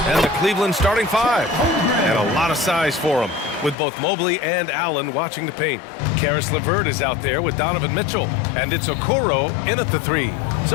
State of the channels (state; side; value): drops out; right; at 3.8 s